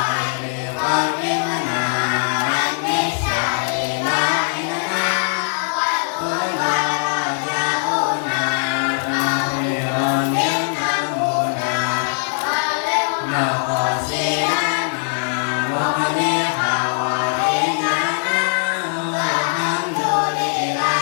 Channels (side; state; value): right; silent; 59 dB below the other